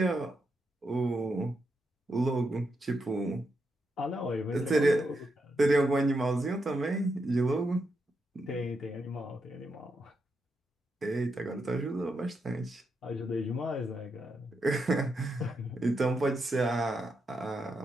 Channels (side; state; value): both; normal; correlation 0.83